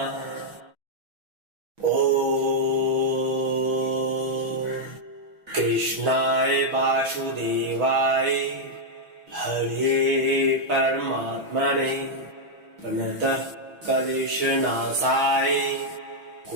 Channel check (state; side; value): late; left; 6.1 ms